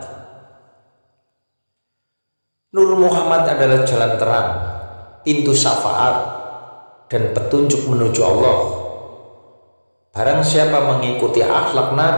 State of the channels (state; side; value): inverted; both; correlation -1.00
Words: Nur Muhammad adalah jalan terang, pintu syafaat, dan petunjuk menuju Allah. Barang siapa mengikuti akhlak